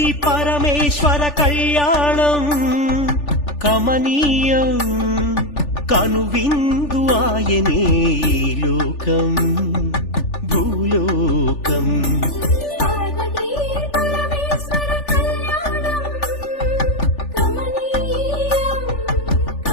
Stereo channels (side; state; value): right; late; 3.4 ms